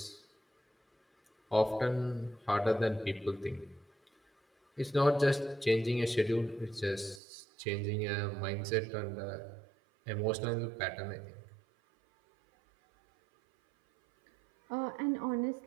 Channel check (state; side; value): drops out; left; at 7.2 s